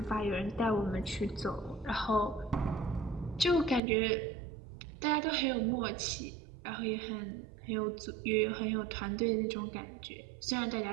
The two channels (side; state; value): left; drops out; at 3.8 s